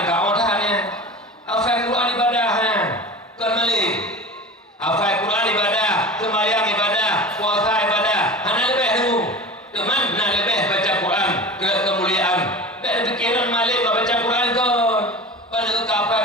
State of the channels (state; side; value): normal; both; correlation 0.33